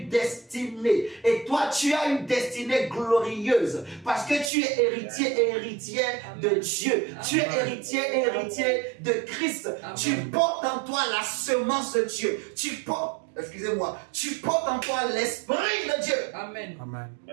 destinée. Et toi, tu as une destinée glorieuse. Parce que tu es héritier et héritière de Dieu. Tu es héritier et héritier de Christ. Tu portes en toi la semence de Dieu. Tu portes, excusez-moi, tu portes en toi l'esprit de Dieu. Amen. Amen.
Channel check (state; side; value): drops out; left; at 4.5 s